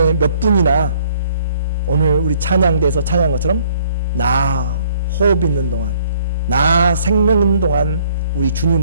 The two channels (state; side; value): inverted; both; correlation -0.61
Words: 몇 분이나 오늘 우리 찬양대에서 찬양한 것처럼 나 호흡 있는 동안, 나 생명 있는 동안 우리